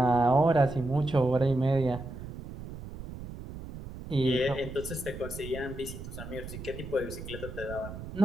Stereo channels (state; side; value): noise; right; rumble, 11 dB below the sound